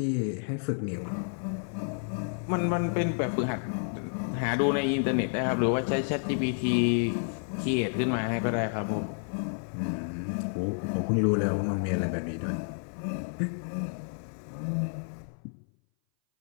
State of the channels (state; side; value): silent; right; 58 dB below the other